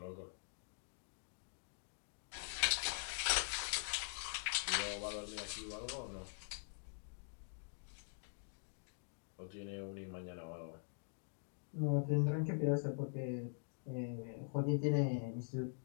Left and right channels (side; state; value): right; silent; digital silence